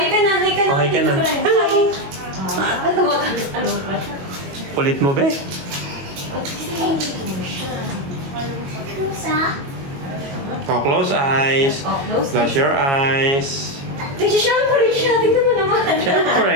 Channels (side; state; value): left; late; 22 ms